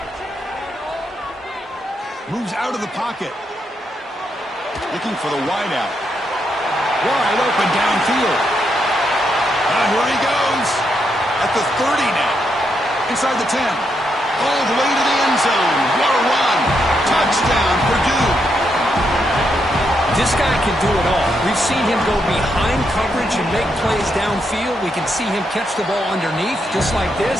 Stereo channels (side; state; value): both; normal; correlation 0.80